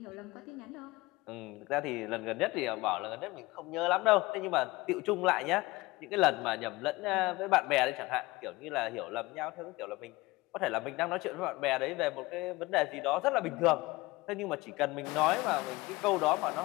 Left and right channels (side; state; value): right; quieter; 21.3 dB